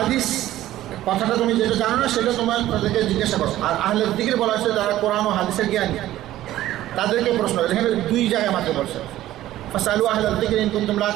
কথাটা তুমি যেটা জানো না সেটা তোমার তাদেরকে জিজ্ঞাসা করো। আর আহলে যিকর বলা হয়েছে যারা কোরআন ও হাদিসের জ্ঞানী, তাদেরকে প্রশ্ন। এখানে দুই জায়গায় মাত্র বলছে, ফাসালু আহলা যিকরি ইন কুনতুম লা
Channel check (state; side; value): quieter; left; 14.3 dB